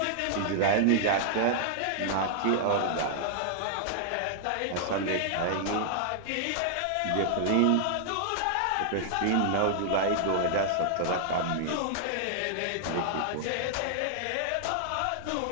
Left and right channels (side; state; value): both; different; correlation -0.01